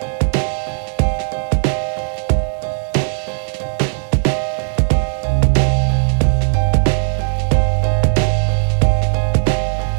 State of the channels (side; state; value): left; silent; digital silence